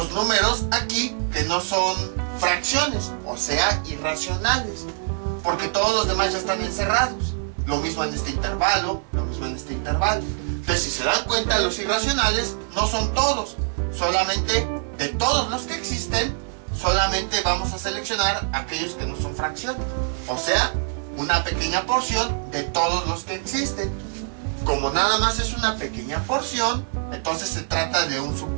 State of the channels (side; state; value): left; silent; 60 dB below the other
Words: números aquí que no son fracciones, o sea, irracionales, porque todos los demás ya están encerrados. Lo mismo en este intervalo, lo mismo en este intervalo. Entonces, si se dan cuenta, los irracionales no son todos, solamente de todos los que existen, solamente vamos a seleccionar aquellos que no son fracciones, o sea, una pequeña porción de todos los que existen. Como nada más es una pequeña porción, entonces se trata de un